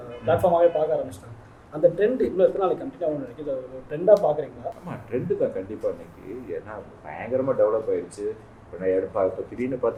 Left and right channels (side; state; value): both; identical; correlation 1.00